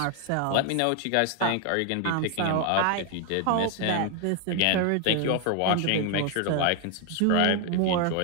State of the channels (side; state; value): both; different; correlation 0.00